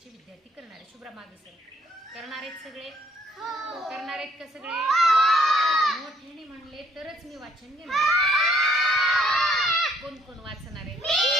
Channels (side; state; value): both; normal; correlation 0.65